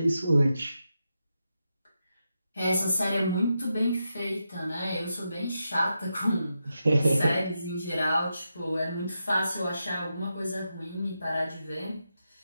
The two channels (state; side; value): inverted; both; correlation -0.87